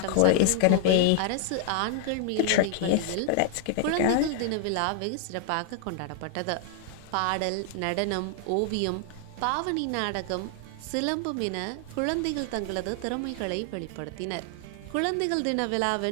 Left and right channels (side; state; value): both; different; correlation 0.00